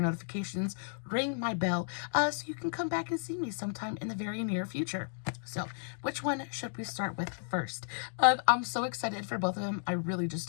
ring my bell, so you can come back and see me sometime in the very near future. So, which one should we start with first? I'm so excited for both of them. I really just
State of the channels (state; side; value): silent; right; digital silence